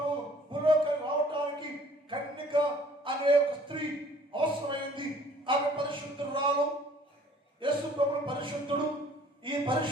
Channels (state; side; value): normal; both; correlation 0.55